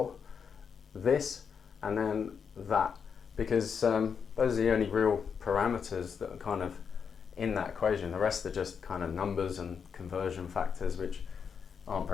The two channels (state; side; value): quieter; right; 6.5 dB